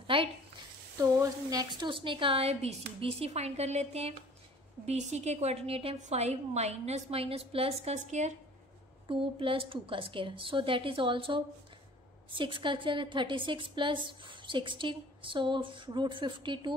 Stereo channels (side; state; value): both; normal; correlation 0.49